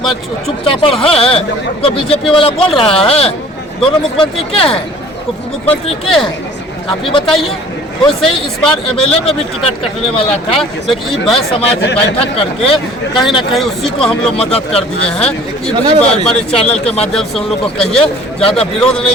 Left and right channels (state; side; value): normal; both; correlation 0.49